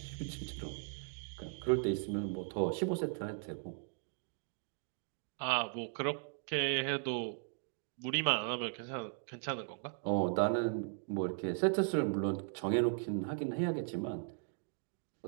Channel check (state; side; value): silent; left; 53 dB below the other